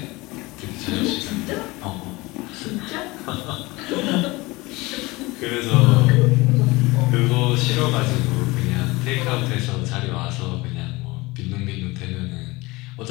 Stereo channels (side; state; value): right; quieter; 22.3 dB